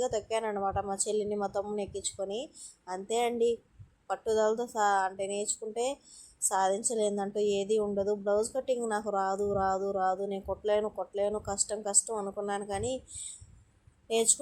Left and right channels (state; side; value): identical; both; correlation 1.00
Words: తొక్కాను అనమాట, మా చెల్లిని మా తమ్ముని ఎక్కించుకొని. అంతే అండి, పట్టుదలతో అంటే నేర్చుకుంటే సాధించలేదంటూ ఏది ఉండదు. బ్లౌజ్ కటింగ్ నాకు రాదు, నేను కొట్టలేను, కష్టం అనుకున్నాను. కానీ